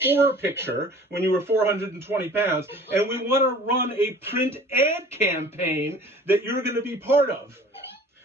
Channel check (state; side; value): normal; both; correlation 0.47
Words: picture when you were 420 pounds. And we want to run a print ad campaign that you're going to be part of.